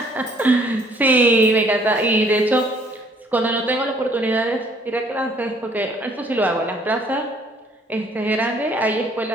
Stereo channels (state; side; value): normal; both; correlation 0.61